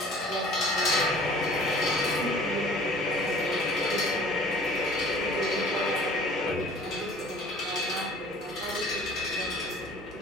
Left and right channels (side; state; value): both; normal; correlation 0.49